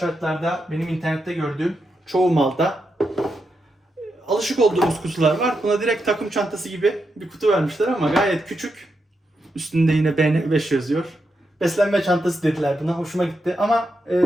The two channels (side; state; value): both; normal; correlation 0.85